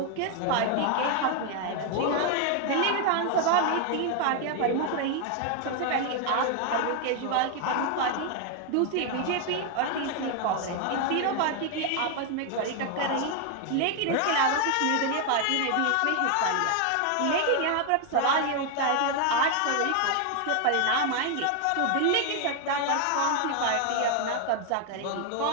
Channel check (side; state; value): both; different; correlation 0.01